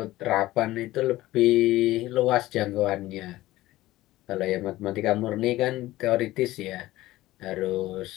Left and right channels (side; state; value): right; quieter; 16.9 dB